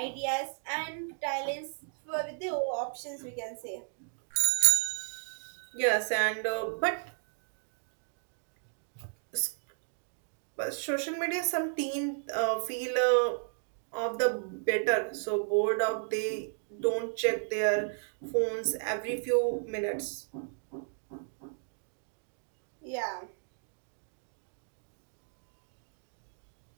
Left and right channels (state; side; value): silent; left; digital silence